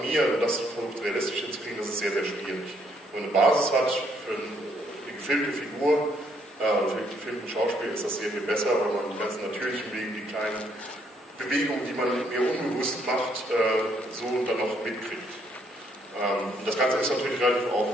und das versucht realistisch hinzukriegen, das ist sehr, sehr schwierig. Wenn man eine Basis hat für eine gefilmte Figur, für einen gefilmten Schauspiel, ist das sehr viel besser, weil man die ganzen natürlichen Wege, die kleinen Bewegungen, die man mir unbewusst macht, so dann noch mitkriegt. Das Ganze ist natürlich relativ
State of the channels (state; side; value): normal; both; correlation 0.70